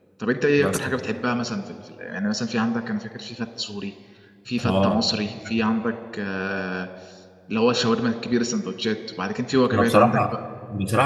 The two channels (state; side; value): identical; both; correlation 1.00